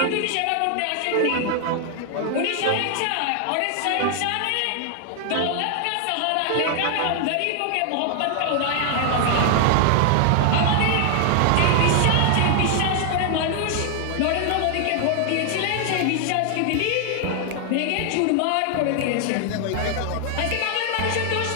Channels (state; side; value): different; both; correlation 0.00